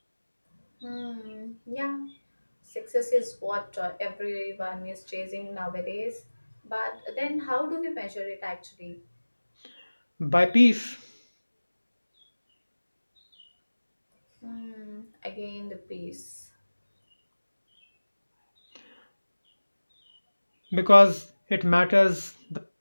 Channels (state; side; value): inverted; both; correlation -1.00